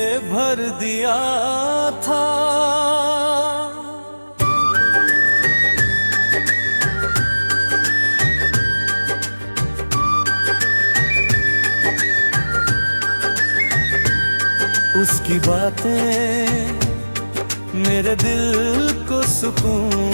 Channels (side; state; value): both; inverted; correlation -1.00